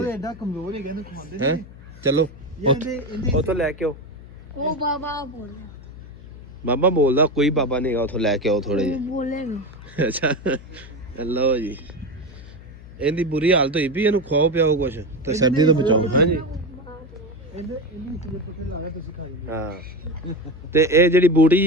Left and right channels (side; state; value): left; noise; hum, 17 dB below the sound